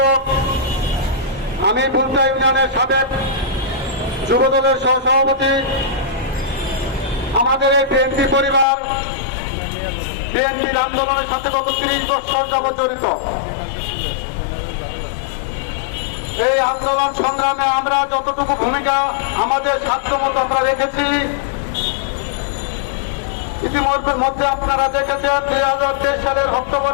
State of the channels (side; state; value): right; drops out; at 8.7 s